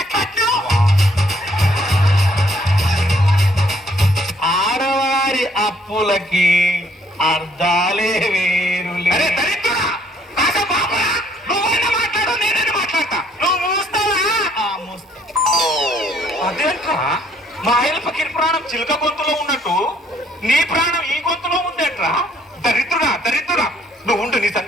కట్నం. ఆడవారి అప్పులకి అర్థాలే వేరులే. అరే దరిద్రుడా! కాసేపు ఆపురా. నువ్వైనా మాట్లాడు, నేనైనా మాట్లాడతా. నువ్వు మూస్తావా? అదేంట్రా, మా ఆయన ఫకీర్ ప్రాణం చిలుక గొంతులో ఉన్నట్టు నీ ప్రాణం ఈ గొంతులో ఉందేంట్రా? దరిద్రుడా, నువ్వు ఉండు, నీ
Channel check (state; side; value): normal; both; correlation 0.65